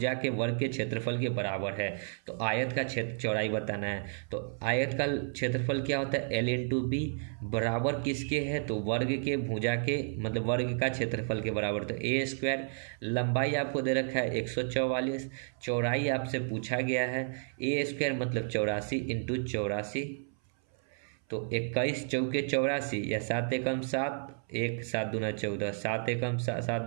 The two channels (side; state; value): left; silent; 57 dB below the other